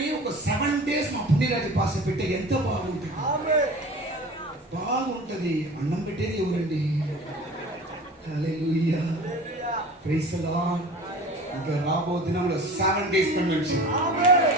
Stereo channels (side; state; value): both; normal; correlation 0.39